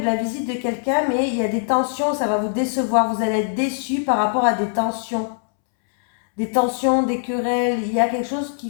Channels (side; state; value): right; silent; 65 dB below the other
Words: la visite de quelqu'un, mais il y a des tensions, ça va vous décevoir. Vous allez être déçu par rapport à des tensions. Des tensions, des querelles. Il y a quelque chose